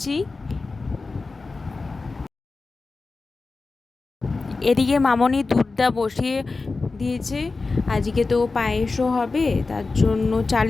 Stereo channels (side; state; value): right; quieter; 3.9 dB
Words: এদিকে মামনি দুধটা বসিয়ে দিয়েছে। আজকে তো পায়েসও হবে, তার জন্য